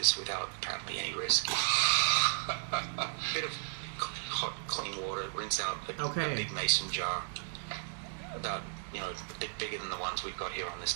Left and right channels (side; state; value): left; silent; digital silence